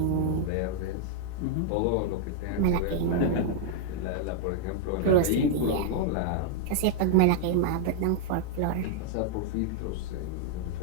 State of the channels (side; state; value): both; different; correlation -0.01